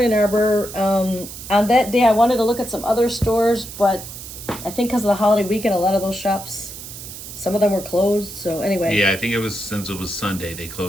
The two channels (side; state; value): right; noise; hiss, 12 dB below the sound